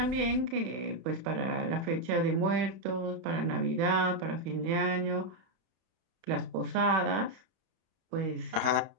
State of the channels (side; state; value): left; late; 31 ms